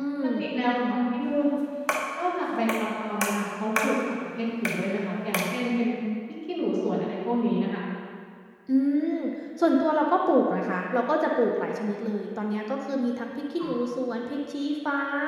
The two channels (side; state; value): both; identical; correlation 1.00